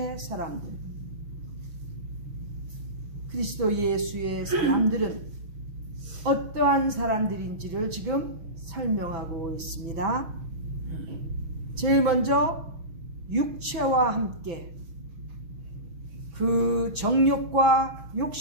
사람들, 그리스도 예수의 사람들은 어떠한 사람들인지를 지금 설명하고 있습니다. 제일 먼저 육체와 함께 그 정욕과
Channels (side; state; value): left; late; 6.0 ms